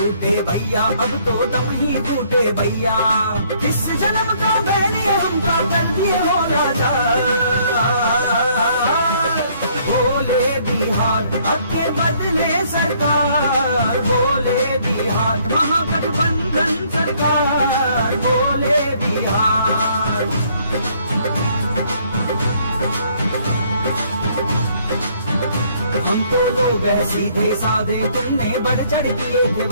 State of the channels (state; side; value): inverted; both; correlation -0.64